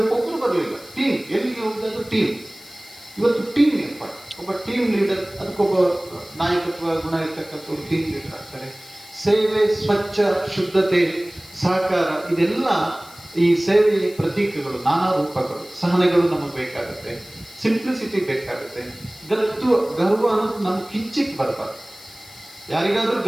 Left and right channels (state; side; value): noise; left; hiss, 21 dB below the sound